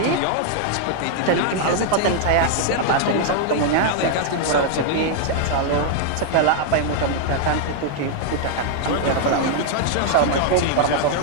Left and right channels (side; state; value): both; different; correlation 0.00